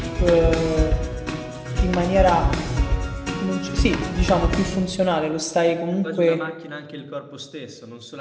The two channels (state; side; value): identical; both; correlation 1.00